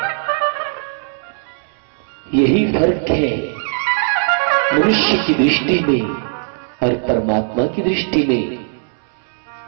यही फर्क है मनुष्य की दृष्टि में और परमात्मा की दृष्टि में।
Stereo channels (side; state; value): left; silent; 67 dB below the other